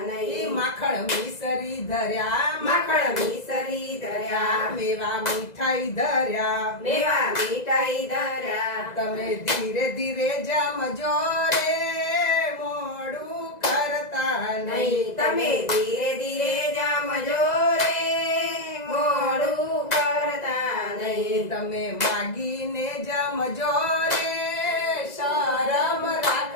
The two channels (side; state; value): right; late; 2.0 ms